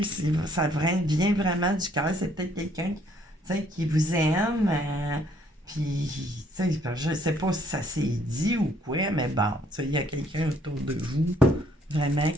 vient vraiment du cœur. C'est peut-être quelqu'un qui vous aime. Puis, tu sais, je sais pas si ça s'est dit ou quoi, mais bon, tu sais, il y a quelqu'un autour de vous, vraiment,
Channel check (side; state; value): both; normal; correlation 0.65